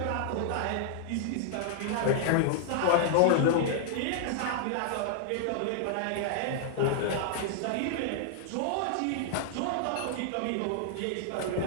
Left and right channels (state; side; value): different; both; correlation -0.01